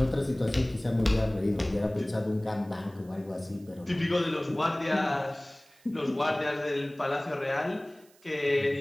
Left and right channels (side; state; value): right; noise; hiss, 29 dB below the sound